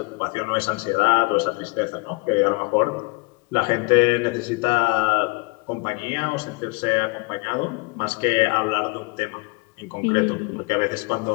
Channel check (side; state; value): right; quieter; 28.0 dB